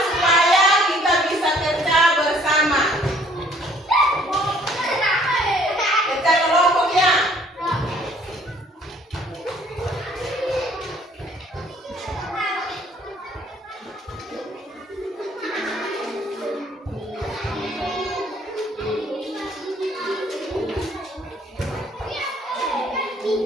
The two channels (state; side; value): normal; both; correlation 0.60